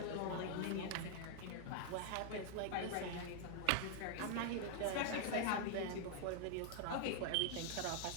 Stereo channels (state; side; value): different; both; correlation 0.00